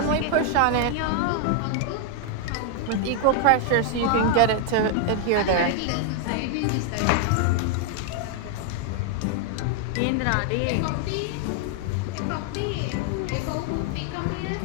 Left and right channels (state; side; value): different; both; correlation 0.00